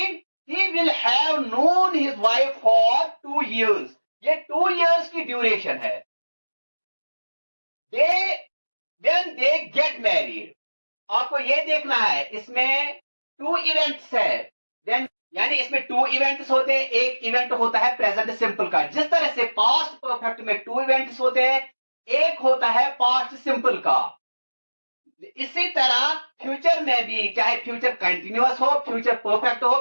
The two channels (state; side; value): inverted; both; correlation -1.00